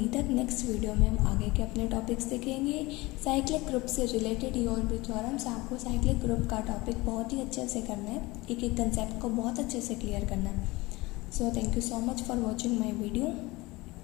तक, नेक्स्ट वीडियो में हम आगे के अपने टॉपिक्स देखेंगे। साइक्लिक ग्रुप से रिलेटेड और भी थ्योरम्स, आपको साइक्लिक ग्रुप का टॉपिक बहुत ही अच्छे से करना है, एक एक कंसेप्ट को बहुत अच्छे से क्लियर करना है। So thank you so much for watching my video.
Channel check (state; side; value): quieter; right; 21.6 dB